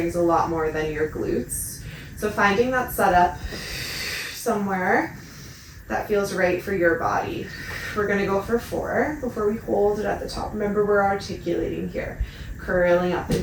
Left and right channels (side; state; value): both; identical; correlation 1.00